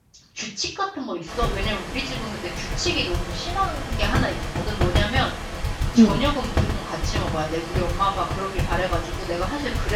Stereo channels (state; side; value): identical; both; correlation 1.00